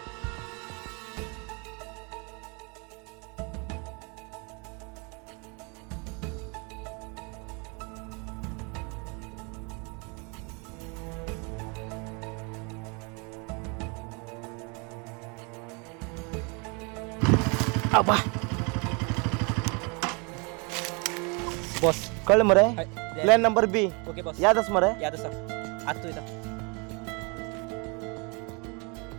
आबा बॉस कळलं मरे hi. Plan number B okay boss यादच मरे यादच आज तू इथं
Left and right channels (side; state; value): left; quieter; 32.0 dB